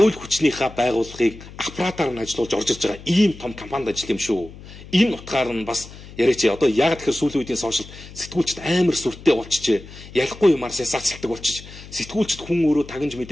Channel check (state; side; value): noise; left; hum, 17 dB below the sound